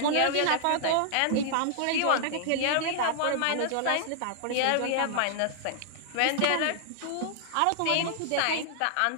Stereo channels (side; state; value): both; different; correlation -0.01